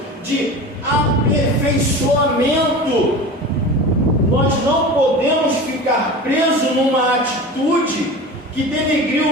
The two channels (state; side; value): normal; both; correlation 0.33